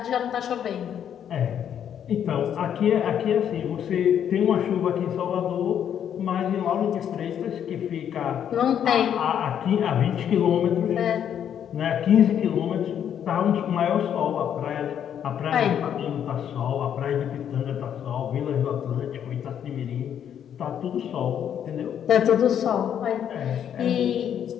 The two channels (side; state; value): right; quieter; 9.2 dB